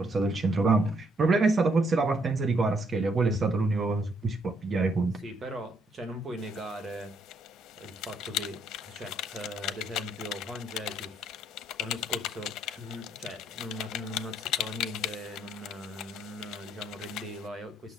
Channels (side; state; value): both; normal; correlation 0.71